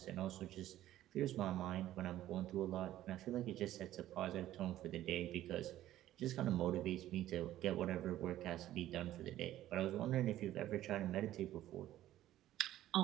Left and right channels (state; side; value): quieter; left; 13.6 dB